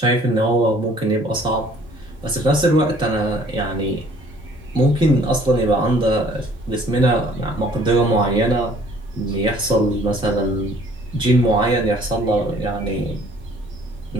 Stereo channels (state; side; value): normal; both; correlation 0.56